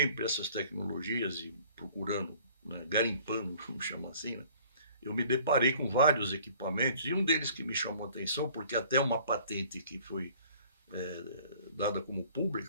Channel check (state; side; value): inverted; both; correlation -0.53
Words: essas tecnologias e procurando, né, garimpando, vamos chamar assim, né, eu me deparei com vários equipamentos, e um deles que me chamou a atenção, porque até uma patente que foi dada como